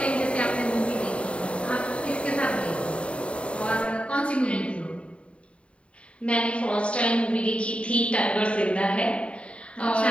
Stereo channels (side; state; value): right; late; 0.060 ms